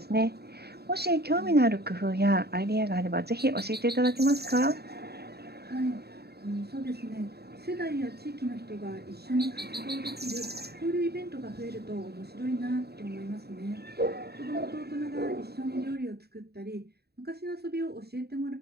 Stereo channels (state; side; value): late; left; 0.47 ms